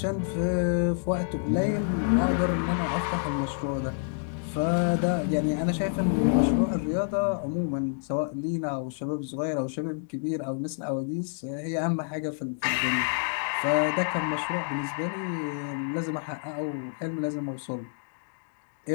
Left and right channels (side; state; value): right; silent; digital silence